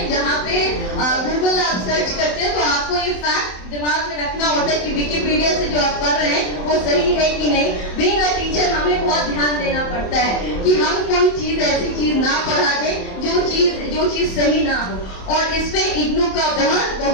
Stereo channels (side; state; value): right; late; 27 ms